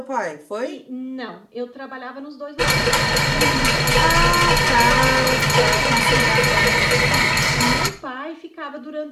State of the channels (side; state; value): both; identical; correlation 1.00